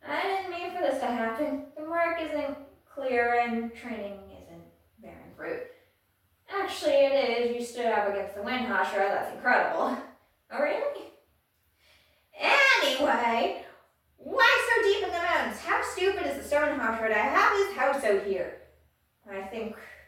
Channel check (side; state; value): both; identical; correlation 1.00